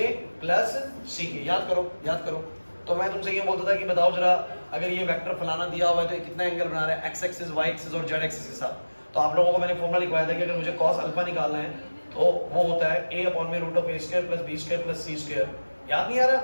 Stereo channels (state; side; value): inverted; both; correlation -1.00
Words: प्लस सी के। याद करो। तो मैं तुमसे ये बोलता था कि बताओ जरा अगर ये वेक्टर फलाना दिया हुआ है तो कितना एंगल बना रहा है एक्स एक्सिस, वाई एक्सिस और जेड एक्सिस के साथ। तो आप लोगों को मैंने फॉर्मूला लिखवाया था कि अगर मुझे cos अल्फा निकालना है तो वो होता है a अपॉन में root of a square plus b square plus c square. याद नहीं आ रहा?